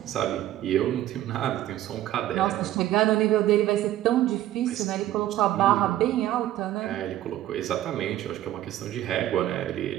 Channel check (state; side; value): quieter; left; 13.5 dB